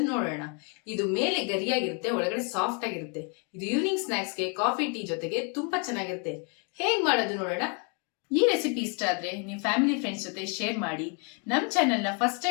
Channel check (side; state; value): right; quieter; 35.4 dB